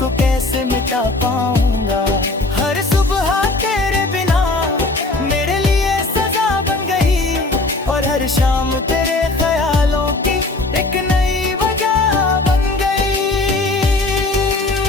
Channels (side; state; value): right; quieter; 3.1 dB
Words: कैसे मिटा पाऊंगा। हर सुबह तेरे बिना मेरे लिए सजा बन गई, और हर शाम तेरे ख्यालों की एक नई वजह बन गई।